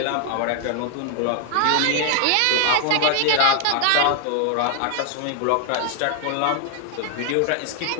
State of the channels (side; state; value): both; different; correlation 0.00